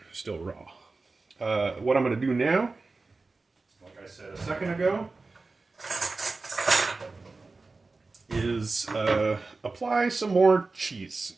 still raw. What I'm going to do now, like I said a second ago, is apply some more cheese,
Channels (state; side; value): quieter; left; 3.7 dB